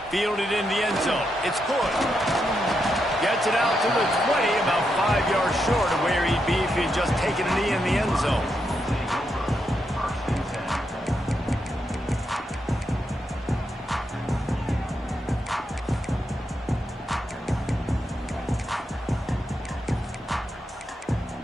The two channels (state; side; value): normal; both; correlation 0.83